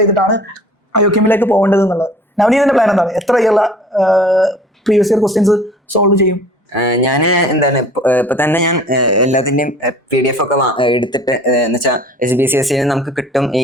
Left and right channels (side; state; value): both; normal; correlation 0.48